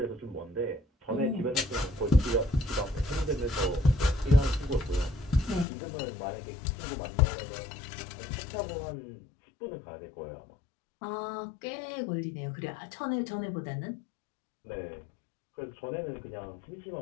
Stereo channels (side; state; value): right; drops out; at 5.7 s